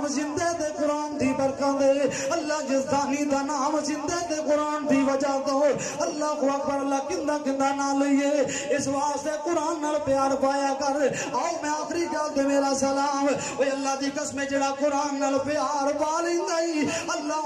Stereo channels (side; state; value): both; identical; correlation 1.00